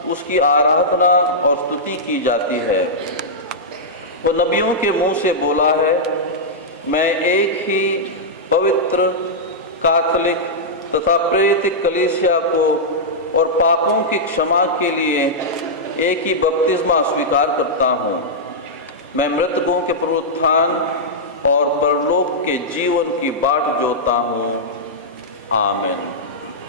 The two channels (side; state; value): both; normal; correlation -0.10